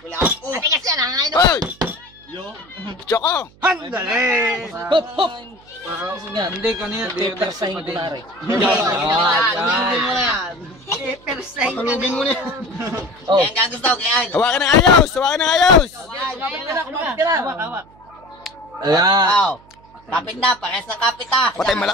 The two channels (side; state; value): right; noise; hum, 27 dB below the sound